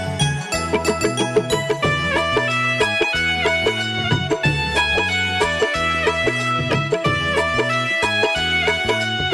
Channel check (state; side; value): identical; both; correlation 1.00